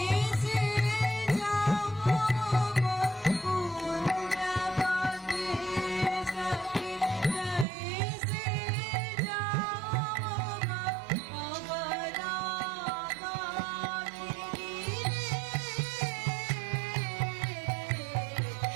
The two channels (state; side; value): drops out; left; at 7.7 s